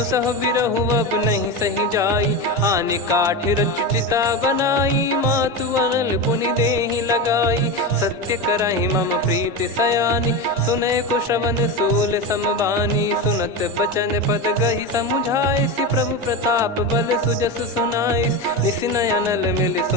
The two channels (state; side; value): normal; both; correlation 0.19